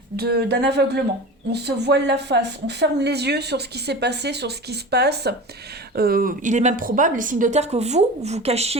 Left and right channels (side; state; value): both; normal; correlation 0.32